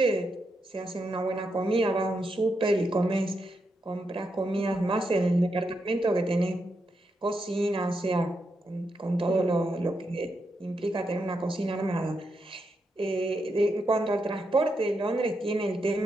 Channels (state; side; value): normal; both; correlation 0.83